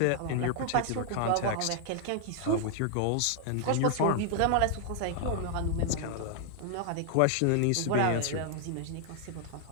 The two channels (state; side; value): different; both; correlation 0.00